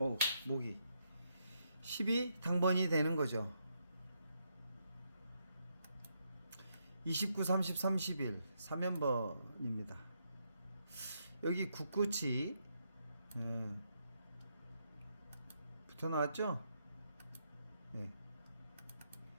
목이 10이 당번이 되는 거죠. 29, 30, 31 3연번입니다. 여기 9끝이 붙어 나왔죠?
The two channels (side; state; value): both; inverted; correlation -0.79